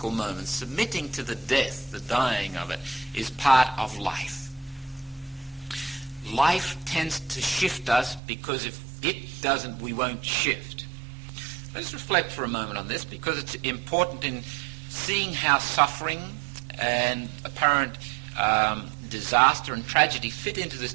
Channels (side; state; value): left; drops out; at 8.2 s